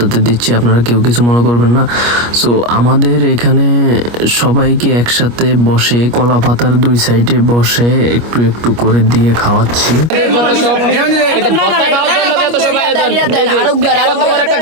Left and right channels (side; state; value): left; late; 25 ms